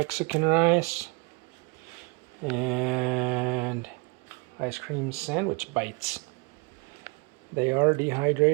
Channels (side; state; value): left; quieter; 29.2 dB